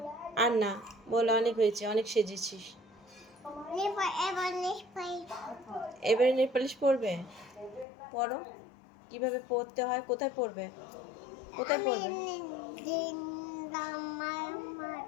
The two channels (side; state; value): right; drops out; at 7.9 s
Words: আর না, বলো অনেক হয়েছে, অনেক সেজেছিস। এবারে নেল পলিশ পরবে? পরো। কিভাবে পরতে হয়, কোথায় পরবে? কোথায় পরবে?